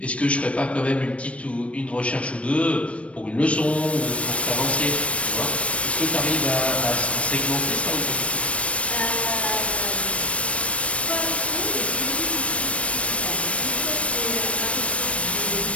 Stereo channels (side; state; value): right; late; 0.062 ms